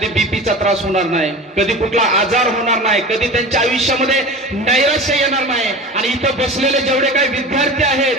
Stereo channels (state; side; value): normal; both; correlation 0.33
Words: बीपीचा त्रास होणार नाही, कधी कुठला आजार होणार नाही, कधी त्यांच्या आयुष्यामध्ये नैराश्य येणार नाही. आणि इथं बसलेले जेवढे काही विद्यार्थी आहेत